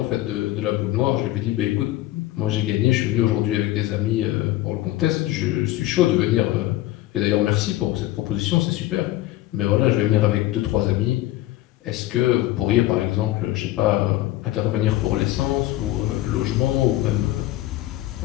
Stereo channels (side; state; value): right; quieter; 15.7 dB